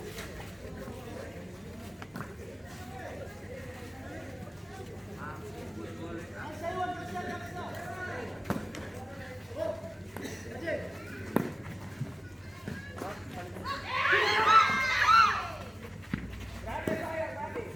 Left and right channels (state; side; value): normal; both; correlation 0.96